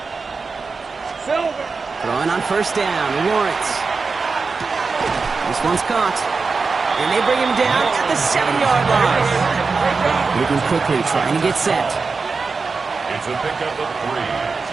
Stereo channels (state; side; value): quieter; left; 4.5 dB